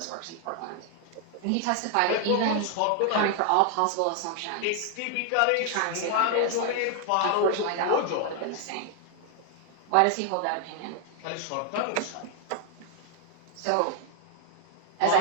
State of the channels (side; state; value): both; different; correlation 0.00